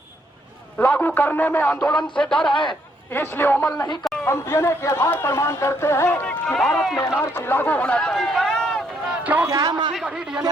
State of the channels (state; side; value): normal; both; correlation 0.72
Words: लागू करने में आंदोलन से डर है, इसलिए अमल नहीं कर। हम डीएनए के आधार पर मांग करते हैं कि भारत में एनआरसी लागू होना चाहिए। क्योंकि